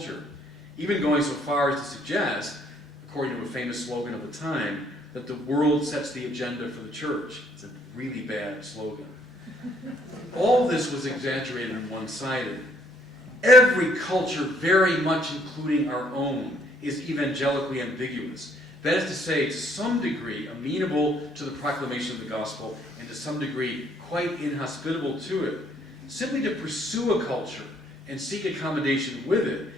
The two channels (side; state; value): both; normal; correlation 0.65